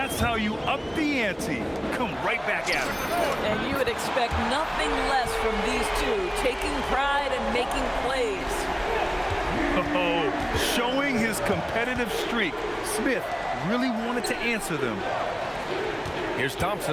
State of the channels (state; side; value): identical; both; correlation 1.00